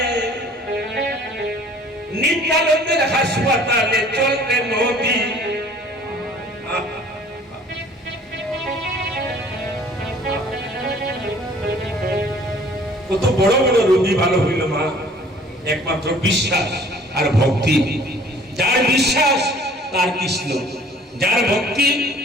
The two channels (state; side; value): normal; both; correlation 0.53